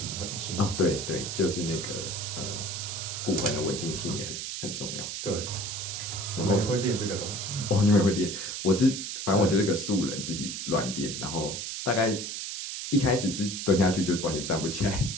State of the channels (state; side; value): noise; right; hiss, 5 dB below the sound